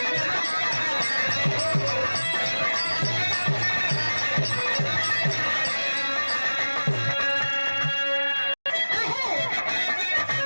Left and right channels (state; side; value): inverted; both; correlation -1.00